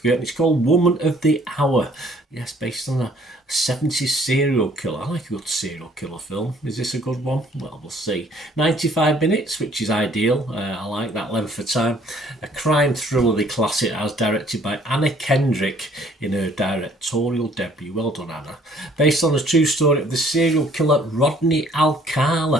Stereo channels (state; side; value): normal; both; correlation 0.59